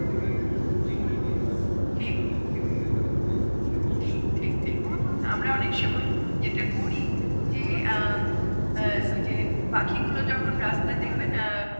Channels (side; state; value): both; inverted; correlation -1.00